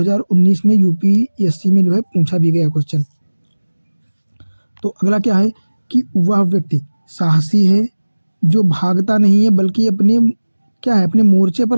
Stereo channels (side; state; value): both; inverted; correlation -1.00